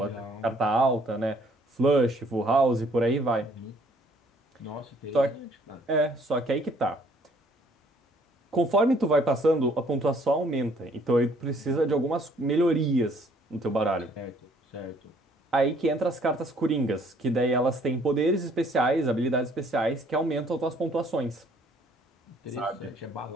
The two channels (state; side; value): normal; both; correlation 0.62